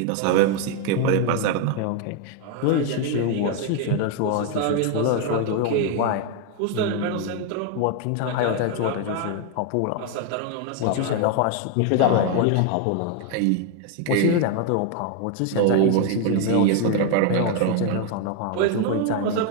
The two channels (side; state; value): both; different; correlation 0.01